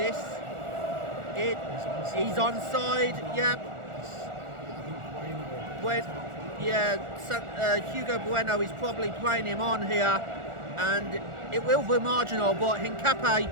He's onside, yeah. Hugo Bueno is probably playing him on here, and it will be marginal, but Hincapié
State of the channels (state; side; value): late; left; 1.4 ms